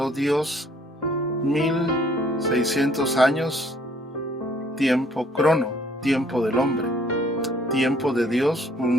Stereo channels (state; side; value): normal; both; correlation 0.61